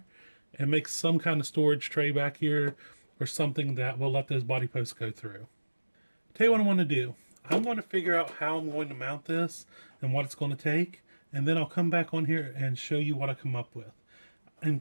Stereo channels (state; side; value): inverted; both; correlation -1.00